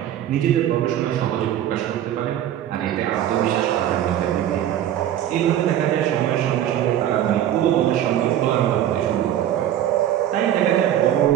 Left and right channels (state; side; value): quieter; left; 11.4 dB